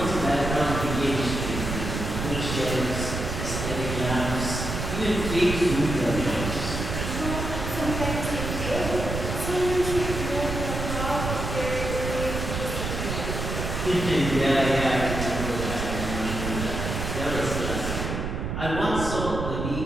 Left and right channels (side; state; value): right; noise; rumble, 4 dB below the sound